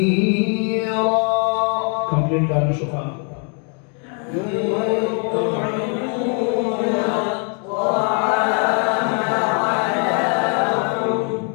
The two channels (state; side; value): quieter; right; 39.9 dB